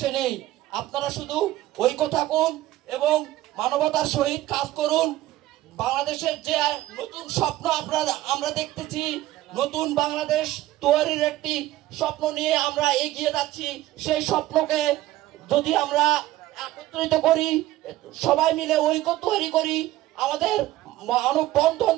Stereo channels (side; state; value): left; quieter; 15.6 dB